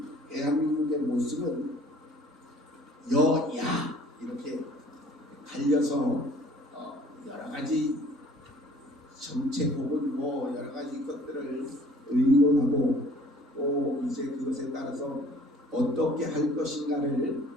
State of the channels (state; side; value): normal; both; correlation 0.53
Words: 대한민국의 모습은 여야 이렇게 갈려서 여러 가지 정책 혹은 뭐 여러 가지 것들을 의논하고 또 이제 그것에 따라서 어떻게 할 것인가를